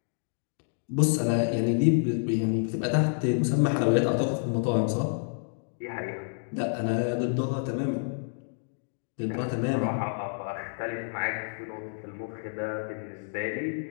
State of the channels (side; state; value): right; silent; digital silence